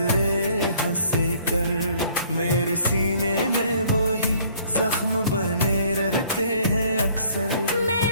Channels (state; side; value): inverted; both; correlation -0.59